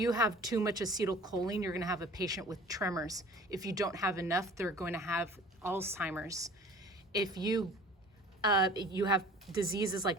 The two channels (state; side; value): normal; both; correlation 0.45